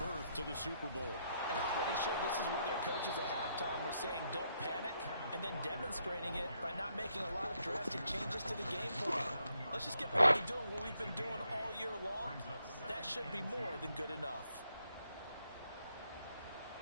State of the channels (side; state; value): both; inverted; correlation -0.76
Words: to the Super Bowl. And I'm pretty sure this is where their coaches at halftime were saying don't panic, and then demonstrating it by not making a lot of drastic changes to the game plan. Let's just get back to doing what we've been doing all year long. That should be more than good enough.